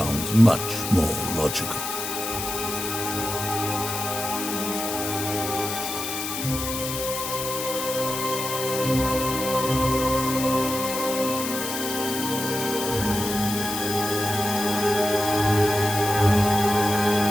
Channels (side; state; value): left; noise; hiss, 5 dB below the sound